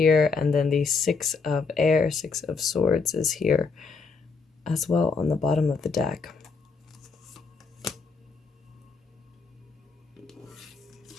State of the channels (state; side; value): quieter; right; 4.7 dB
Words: and then the Six of Air, Six of Swords is here as well on the bottom of the deck.